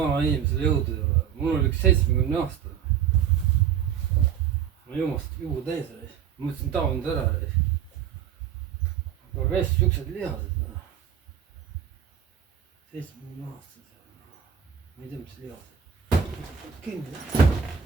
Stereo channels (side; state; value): left; quieter; 8.5 dB